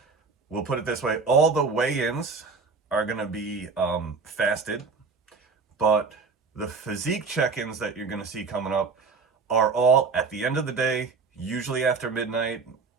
we'll put it this way, all the weigh-ins are going to be fasted, but the physique check-ins that you're going to see coming up are all at the end of the day, usually after midnight.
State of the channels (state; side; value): quieter; left; 4.8 dB